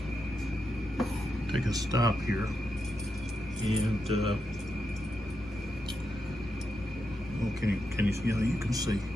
a stop here, and can you see? Yeah, you can see.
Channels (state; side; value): normal; both; correlation 0.85